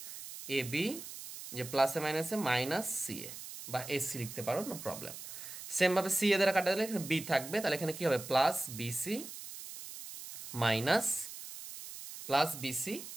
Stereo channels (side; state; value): right; noise; hiss, 11 dB below the sound